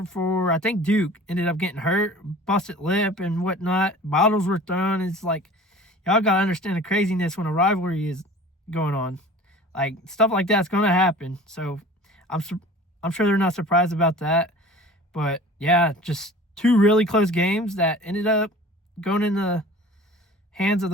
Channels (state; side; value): normal; both; correlation 0.43